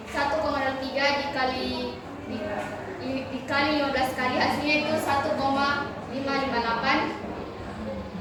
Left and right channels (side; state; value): both; identical; correlation 1.00